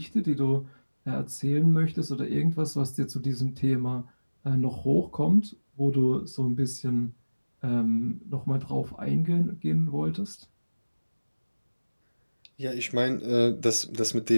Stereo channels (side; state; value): both; inverted; correlation -1.00